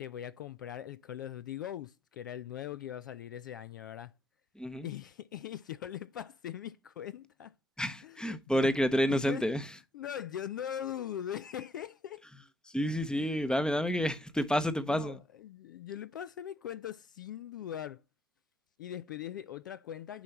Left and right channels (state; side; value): normal; both; correlation 0.72